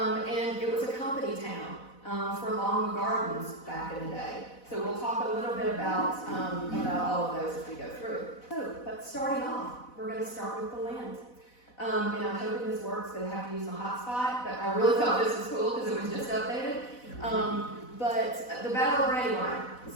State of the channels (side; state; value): right; late; 4.0 ms